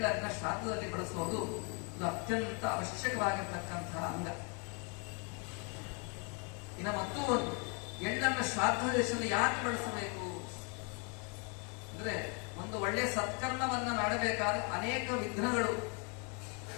ಶ್ರಾದ್ದದಲ್ಲಿ ಬಳಸೋದು ಇದು ಅತ್ಯಂತ ಅವಶ್ಯಕವಾಗಿರ್ತಕ್ಕಂತಹ ಅಂಗ. ಇನ್ನು ಮತ್ತೂ ಒಂದು, ಎಳ್ಳನ್ನ ಶ್ರಾದ್ದ ದೇಶದಲ್ಲಿ ಯಾಕೆ ಬಳಸಬೇಕು ಅಂದ್ರೆ, ಒಂದು ಒಳ್ಳೆ ಸತ್ಕರ್ಮವನ್ನ ಮಾಡಬೇಕಾದ್ರೆ ಅನೇಕ ವಿಘ್ನಗಳು,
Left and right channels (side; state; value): right; quieter; 34.4 dB